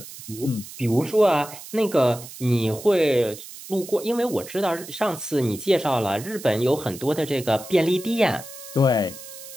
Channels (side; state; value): right; noise; hiss, 14 dB below the sound